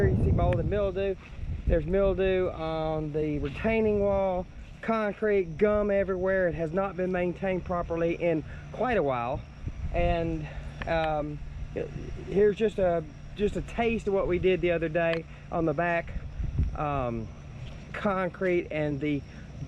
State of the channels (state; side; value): identical; both; correlation 1.00